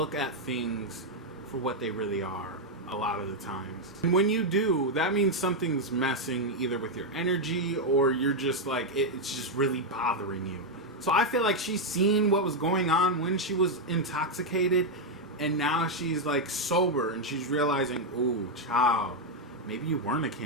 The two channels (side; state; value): both; normal; correlation 0.01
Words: at things for what they really are a lot of the times. And when you do, that means something's messing either with your energy or you're just like, it's just really bothering you. So I feel like she's seen what was going on when she was intoxicated, and now she's like sober and she's realizing, ooh, child, maybe you weren't a